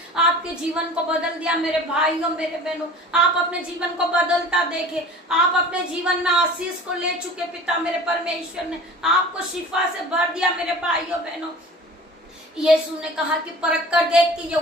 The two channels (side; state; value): both; normal; correlation 0.42